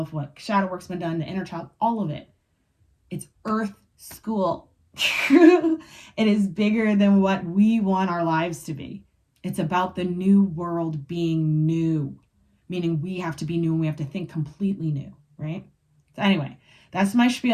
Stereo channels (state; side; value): identical; both; correlation 1.00